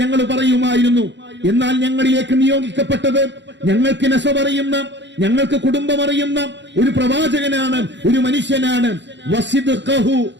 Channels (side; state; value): left; late; 0.52 ms